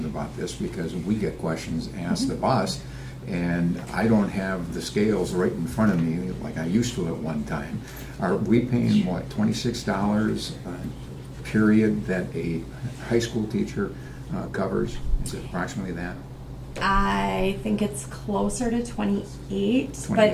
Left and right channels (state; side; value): identical; both; correlation 1.00